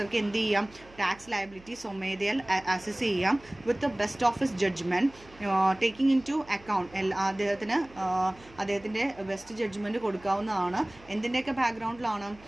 എന്ത് ചെയ്യാം? ടാക്സ് ലയബിലിറ്റി സ്വമേധയാൽ അസസ് ചെയ്യാം with the best office judgement taking into account. അദ്ദേഹത്തിൻ്റെ ബെസ്റ്റ് ജഡ്ജ്മെൻറ്റ് കൊടുക്കാവുന്നതാണ്. എന്തിൻ്റെയൊക്കെ ബാക്ക്ഗ്രൗണ്ടിലാണ്?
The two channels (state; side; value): noise; right; hum, 24 dB below the sound